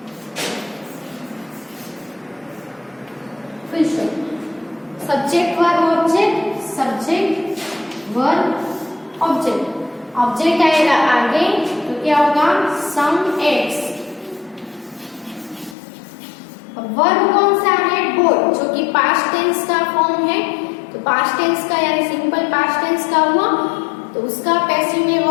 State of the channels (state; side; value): drops out; right; at 15.8 s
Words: Subject verb object, subject verb object. Object आएगा आगे तो क्या होगा, सम एग्स। वर्ब कौन सा है, बोट, जो कि पास्ट टेंस का फॉर्म है। तो पास्ट टेंस का यानी सिंपल पास्ट टेंस का हुआ, तो उसका पैसिव में